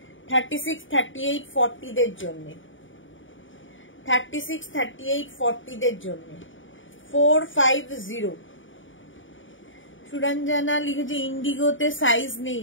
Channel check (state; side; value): late; right; 0.56 ms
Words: 36, 38, 40 দের জন্য, 36, 38, 40 দের জন্য 450। সুরঞ্জনা লিখেছে ইন্ডিগোতে সাইজ নেই,